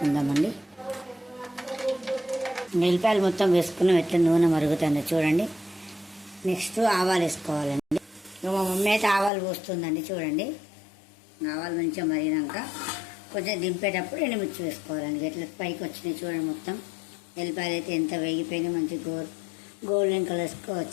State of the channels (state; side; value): drops out; right; at 9.3 s